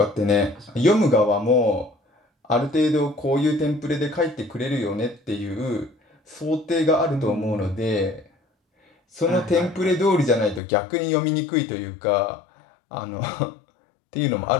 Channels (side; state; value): right; drops out; at 10.6 s